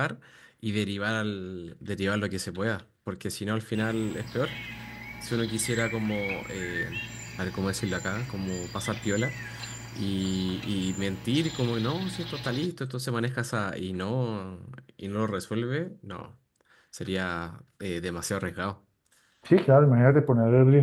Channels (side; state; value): both; identical; correlation 1.00